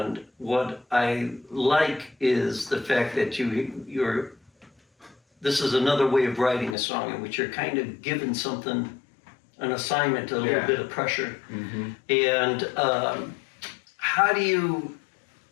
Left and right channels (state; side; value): drops out; right; at 6.8 s